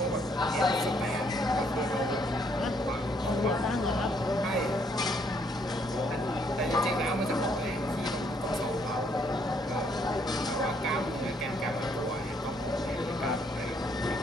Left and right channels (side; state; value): both; normal; correlation 0.69